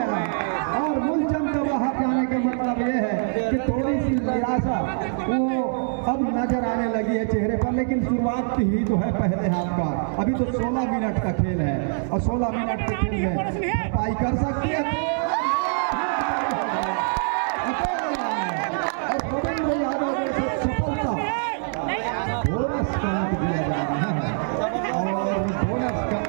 है। और मूलचंद का बाहर जाने का मतलब ये है कि थोड़ी सी निराशा वो अब नजर आने लगी है चेहरे पर। लेकिन शुरुआत ही तो है पहले हाथ का, अभी तो 16 मिनट का खेल है और 16 मिनट के खेल में भरपाई कर सकती है और रविंद्र यादव ने सफलता बोनस का अंक दिया जा रहा है और बोनस का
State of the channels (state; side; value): silent; left; digital silence